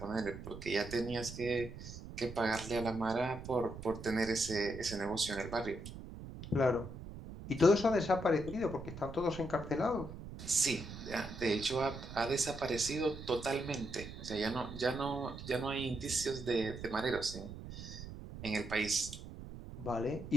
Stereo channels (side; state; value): right; noise; rumble, 11 dB below the sound